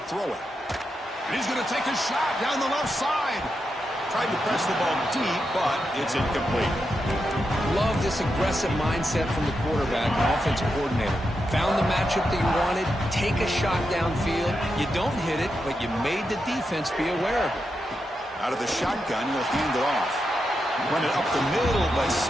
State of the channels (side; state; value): both; normal; correlation 0.86